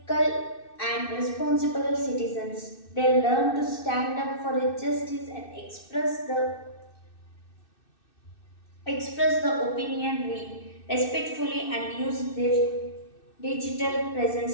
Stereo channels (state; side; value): late; right; 2.6 ms